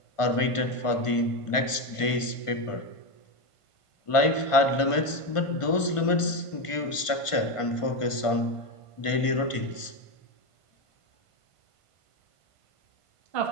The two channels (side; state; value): right; late; 1.5 ms